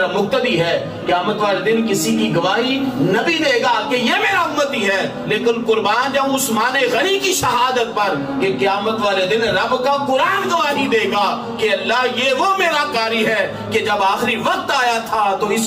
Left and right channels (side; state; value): both; identical; correlation 1.00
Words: مقتدی ہے. قیامت والے دن کسی کی گواہی نبی دے گا کہ یہ میرا امتی ہے. لیکن قربان جاؤں عثمان غنی کی شہادت پر کہ قیامت والے دن رب کا قرآن گواہی دے گا کہ اللہ یہ وہ میرا قاری ہے کہ جب آخری وقت آیا تھا تو